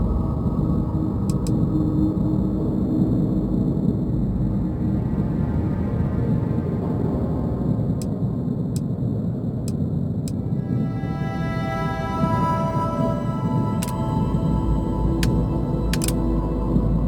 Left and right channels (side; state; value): both; identical; correlation 1.00